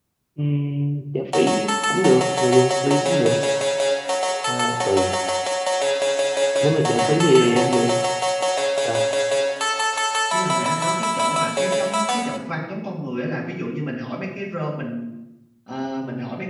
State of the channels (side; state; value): both; identical; correlation 1.00